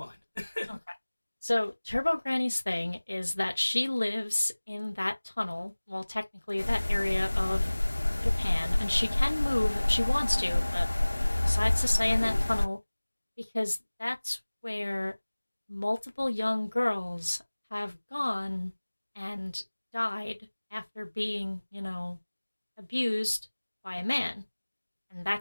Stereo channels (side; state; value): both; inverted; correlation -1.00